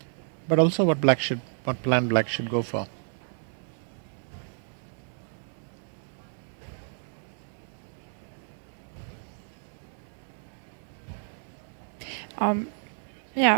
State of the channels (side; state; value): left; silent; digital silence